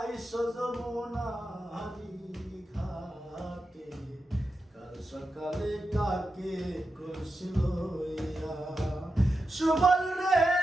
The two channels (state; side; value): normal; both; correlation 0.89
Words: যমুনারি ঘাটে। কাল সকালে কাকে করছিল ইয়া। সুবল রে